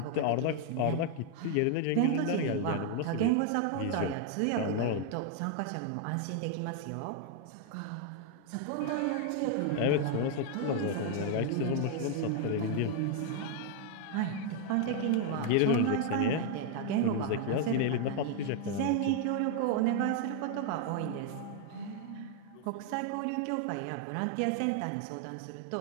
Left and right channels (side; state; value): both; different; correlation 0.00